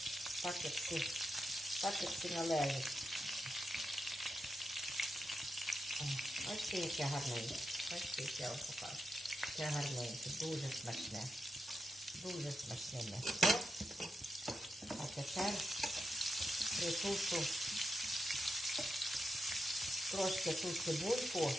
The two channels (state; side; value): normal; both; correlation 0.87